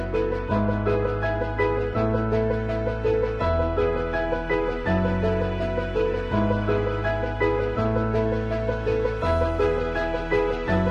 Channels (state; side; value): identical; both; correlation 1.00